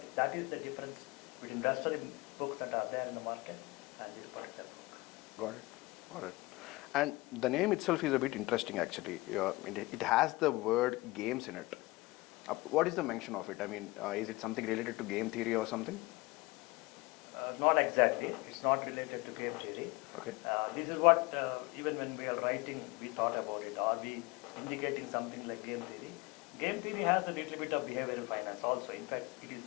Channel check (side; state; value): right; quieter; 22.4 dB